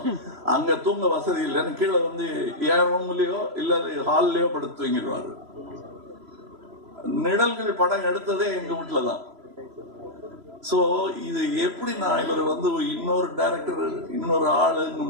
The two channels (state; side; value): late; left; 3.0 ms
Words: அங்க தூங்க வசதி இல்லைன்னு கீழே வந்து என் ரூம்லயோ இல்ல ஹால்லயோ படுத்து தூங்கிடுவாரு. நிழல்கள் படம் எடுத்ததே எங்க வீட்டுலதான். சோ இது எப்படி நான் இவர் வந்து இன்னொரு டைரக்டர் இன்னொரு ஆளுங்க